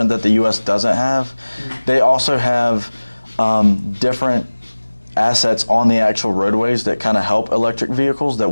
that the U.S. doesn't have. They also have different assets on the actual roadways that kind of help electric vehicles that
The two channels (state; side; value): inverted; both; correlation -1.00